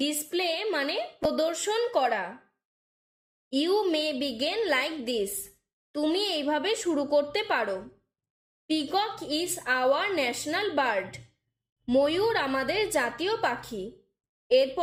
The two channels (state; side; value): identical; both; correlation 1.00